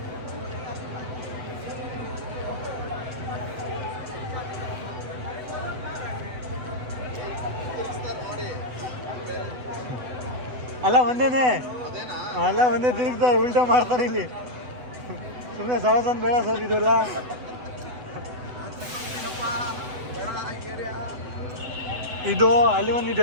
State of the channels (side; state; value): left; late; 8.0 ms